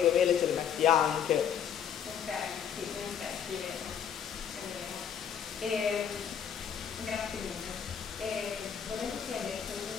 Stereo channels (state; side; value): quieter; right; 8.2 dB